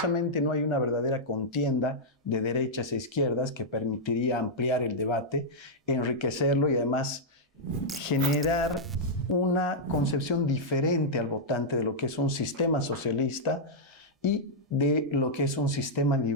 no hay una verdadera contienda de derechas e izquierdas que permitiría ampliar el debate, enriquecerlo y además generar una concepción diferente al votante de lo que es un sistema socialista y de lo que es un sistema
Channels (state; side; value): normal; both; correlation -0.07